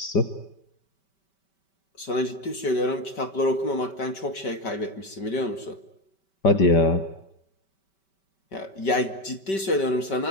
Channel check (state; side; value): late; right; 5.2 ms